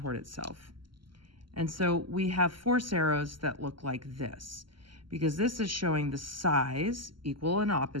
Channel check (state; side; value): late; left; 0.73 ms